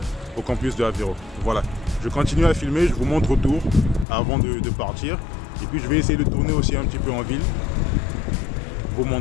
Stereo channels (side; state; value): right; drops out; at 4.0 s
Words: au campus de Aveiro. Voilà, je continue à filmer, je vous montre autour avant de partir. Et puis je vais essayer de tourner aussi un petit peu en ville, vous